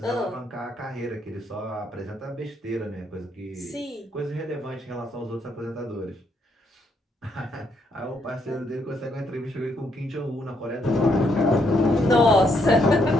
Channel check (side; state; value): both; normal; correlation 0.74